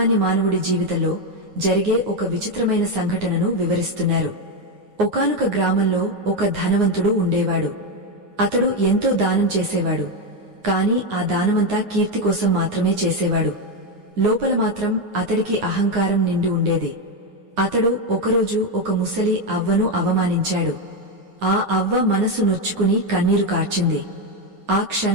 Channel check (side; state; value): left; late; 9.6 ms